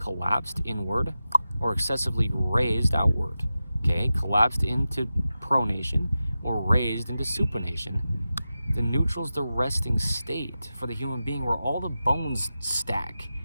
inward, or excessively raised outward. Okay, collapsed into pronation, or raised into supination. The neutral is the resting state for the human being where all the bones stack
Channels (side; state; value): both; inverted; correlation -0.93